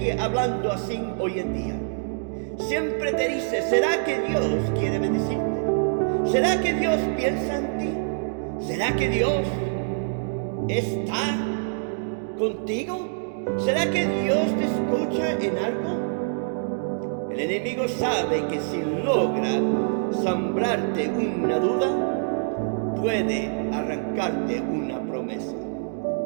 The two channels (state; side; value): silent; left; digital silence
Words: hablando así hoy en día. Siempre te dice: ¿será que Dios quiere bendecirte? ¿Será que Dios piensa en ti? ¿Será que Dios está contigo? ¿Será que Dios te escucha en algo? El enemigo sabe que si logra sembrarte una duda, puede arrancarte una promesa.